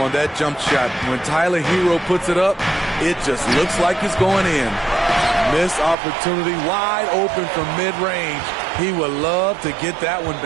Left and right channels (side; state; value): left; drops out; at 6.0 s